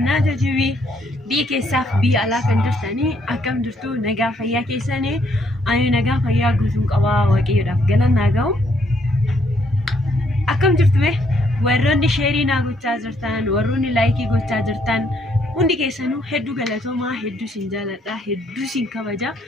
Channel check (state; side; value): normal; both; correlation 0.70